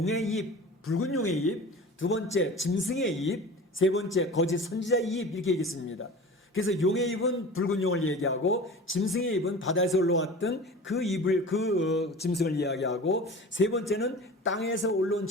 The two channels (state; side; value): normal; both; correlation 0.37